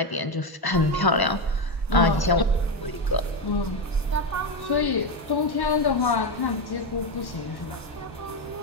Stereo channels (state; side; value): normal; both; correlation 0.11